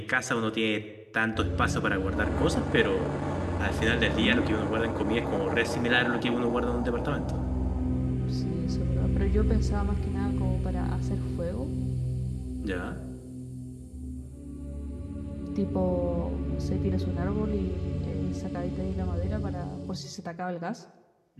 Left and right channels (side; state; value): both; identical; correlation 1.00